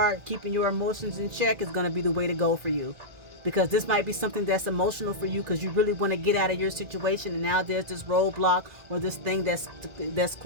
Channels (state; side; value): late; left; 2.0 ms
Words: keeping your emotions in check, is going to be the way to go for you. because this might be something that's emotional for you because you really want to get out of your situation, and now there's this roadblock or this thing that's